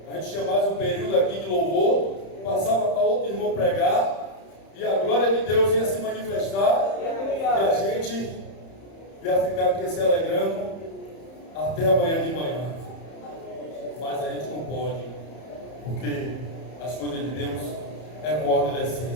A gente tinha mais um período aqui de louvor, passava para outro irmão pregar, e a glória de Deus ia se manifestar, e a gente ia ficar aqui se alegrando até amanhã de manhã. Mas a gente não pode, porque as coisas de Deus é com ordem da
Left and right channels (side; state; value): right; late; 31 ms